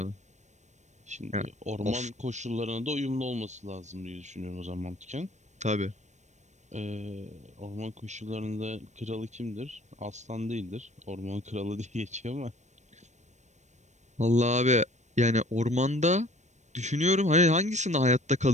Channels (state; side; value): late; left; 0.34 ms